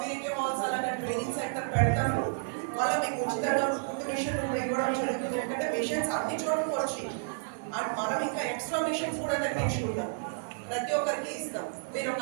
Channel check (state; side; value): silent; left; digital silence